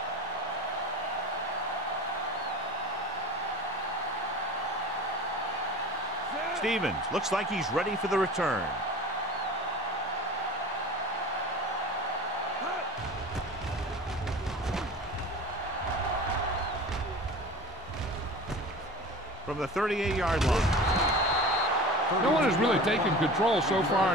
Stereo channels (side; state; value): both; normal; correlation 0.37